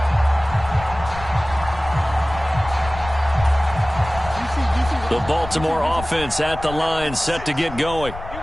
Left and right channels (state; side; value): noise; left; rumble, 13 dB below the sound